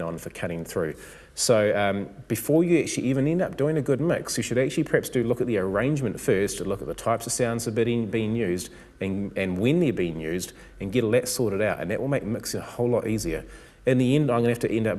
on for cutting through. So before you actually even end up doing a good mix, you should actually perhaps look at the arrangement first, to look at the types of sounds that are being used and when they're being used, and get all that sorted out, and that will make mixing a whole lot easier. In the end, I'm going to have to end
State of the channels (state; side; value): identical; both; correlation 1.00